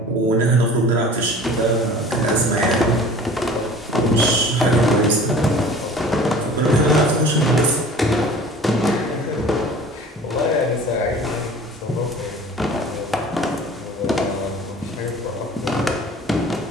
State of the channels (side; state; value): both; normal; correlation 0.44